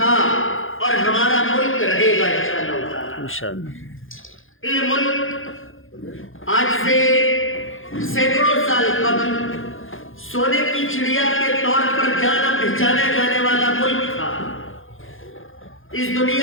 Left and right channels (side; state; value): right; late; 0.59 ms